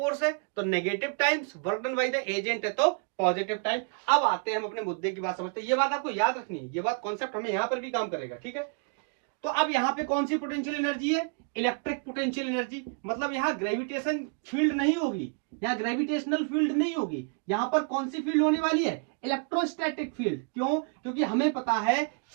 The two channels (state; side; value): quieter; left; 39.0 dB